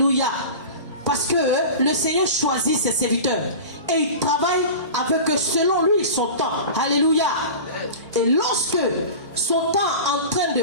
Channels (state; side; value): inverted; both; correlation -0.33